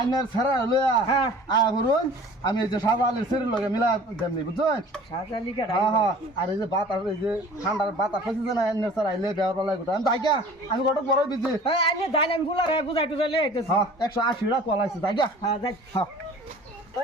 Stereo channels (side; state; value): both; normal; correlation 0.46